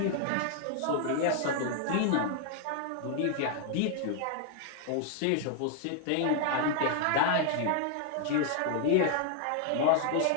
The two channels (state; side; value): different; both; correlation 0.00